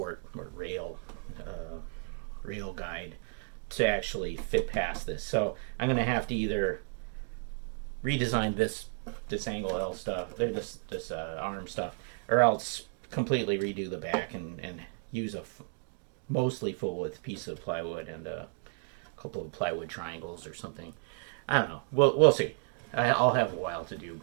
or rail guide to actually fit past this. So I'm gonna have to either redesign this angle L stuff, this arm stuff, or else completely redo the back and use a mostly full width piece of plywood and a couple of plywood triangles or something. I don't know. We'll see. I'll have a while to do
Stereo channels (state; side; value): silent; left; 56 dB below the other